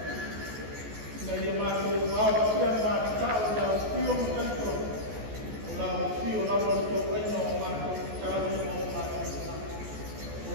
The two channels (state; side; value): late; left; 14 ms